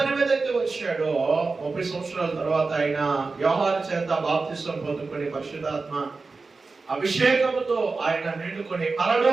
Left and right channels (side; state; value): left; quieter; 4.0 dB